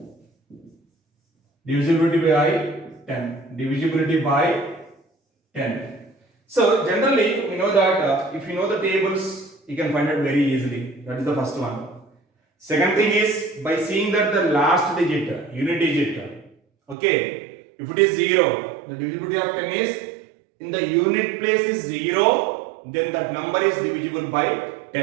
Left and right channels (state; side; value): drops out; left; at 16.9 s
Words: divisibility by 10, divisibility by 10. So generally we know that if you know the tables, you can find it very easily. That is the first one. Second thing is by seeing that the last digit, unit digit, okay. If it is 0, the divisibility of 10 is in the unit place is 0, then that number is divisible by